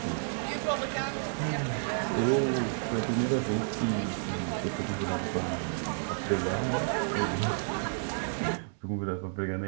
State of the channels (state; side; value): silent; left; digital silence